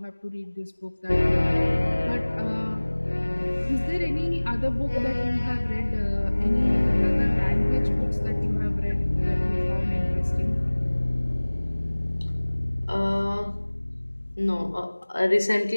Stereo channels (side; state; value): both; inverted; correlation -1.00